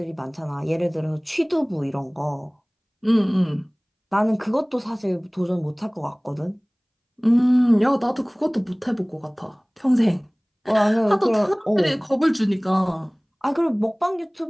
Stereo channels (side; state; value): both; identical; correlation 1.00